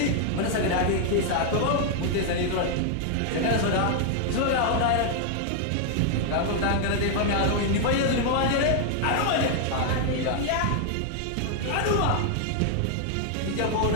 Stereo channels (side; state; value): both; different; correlation 0.00